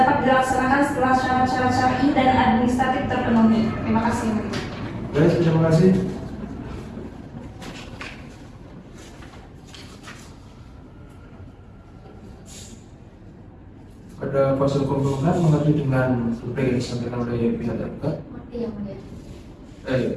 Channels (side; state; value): both; identical; correlation 1.00